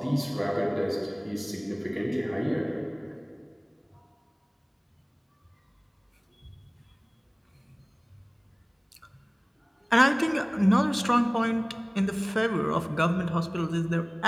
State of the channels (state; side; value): identical; both; correlation 1.00